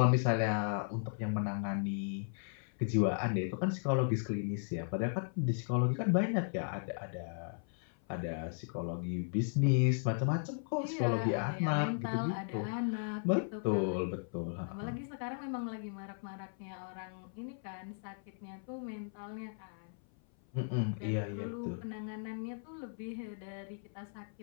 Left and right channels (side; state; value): right; silent; 54 dB below the other